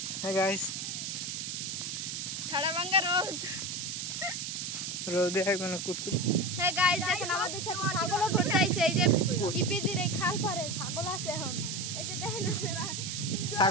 হ্যাঁ গাইস রাড়াভাঙ্গা রোদ রোদে এখন কুটকুট। হ্যাঁ গাইস দেখেন আমাদের সাথে ছাগলও ঘুরতে আইছে। এই যে ইপিজির এই খাল পারে ছাগল আছে এখন। এই যে দেখেন আপনারা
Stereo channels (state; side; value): noise; right; hiss, 4 dB below the sound